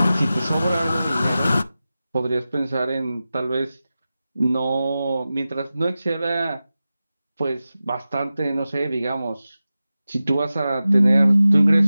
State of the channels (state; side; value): inverted; both; correlation -0.94